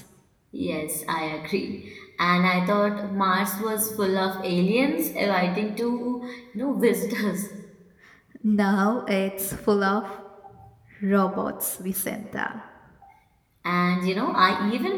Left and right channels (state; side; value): identical; both; correlation 1.00